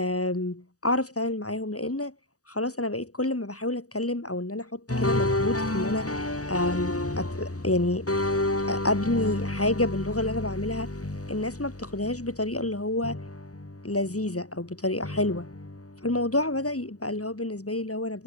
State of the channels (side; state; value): right; late; 0.66 ms